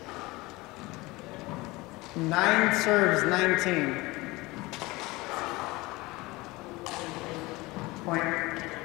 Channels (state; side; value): quieter; right; 21.9 dB